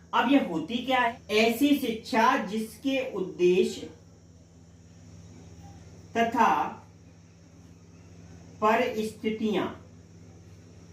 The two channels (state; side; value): identical; both; correlation 1.00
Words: अब यह होती क्या है, ऐसी शिक्षा जिसके उद्देश्य तथा परिस्थितियां,